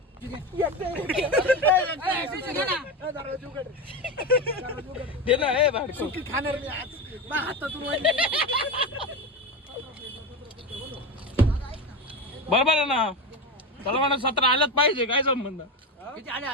दे ना, हे भाडको. खाणार मी आज. माझ्या हातातून बरोबर आहे ना. चला म्हणा 17 आलंच पाहिजे. काय संबंध? किती आले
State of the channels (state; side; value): normal; both; correlation 0.19